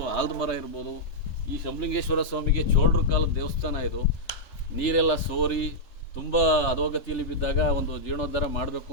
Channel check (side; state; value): right; late; 3.4 ms